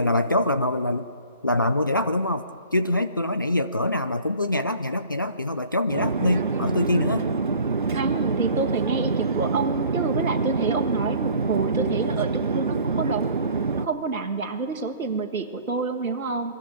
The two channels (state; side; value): inverted; both; correlation -0.51